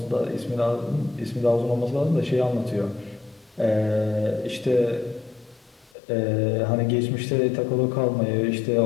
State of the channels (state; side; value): drops out; right; at 5.9 s